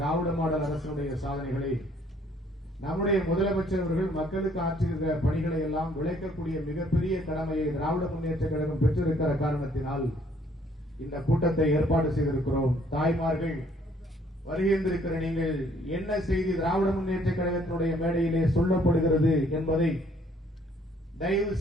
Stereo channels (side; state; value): both; normal; correlation 0.63